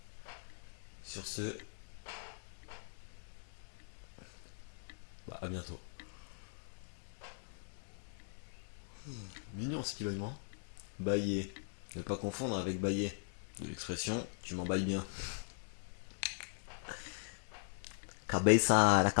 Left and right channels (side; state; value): right; silent; digital silence